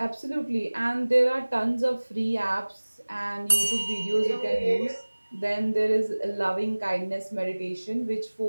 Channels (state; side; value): inverted; both; correlation -1.00